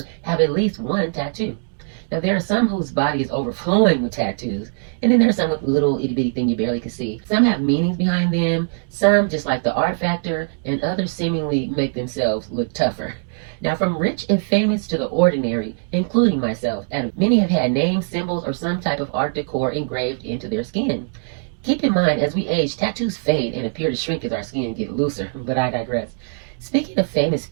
have at least one tattoo. Now, there are some whose body is overflowing with tattoos, and then there are some with little itty-bitty thing you barely can see. Some have meanings behind them, some just like the art factor, and others seemingly make themselves look tougher. Now, from rich and famous to the ordinary, including myself, and many have had names, symbols, or some type of art decor engraved into their skin. Keep in mind, as we age, tattoos fade and appear to shrink as our skin gets looser, but I digress. Speaking of famous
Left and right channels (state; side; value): silent; left; digital silence